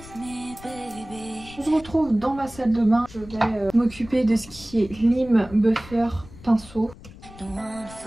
On se retrouve dans ma salle de bain. Je vais m'occuper de ce qui est lime, buffer, pinceau.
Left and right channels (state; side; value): noise; left; rumble, 19 dB below the sound